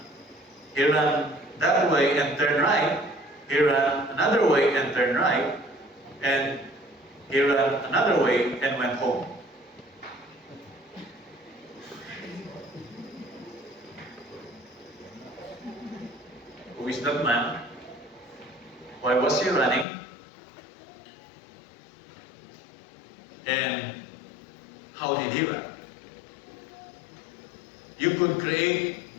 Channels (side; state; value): right; drops out; at 19.9 s